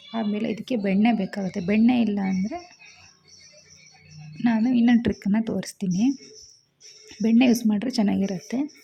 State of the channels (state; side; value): identical; both; correlation 1.00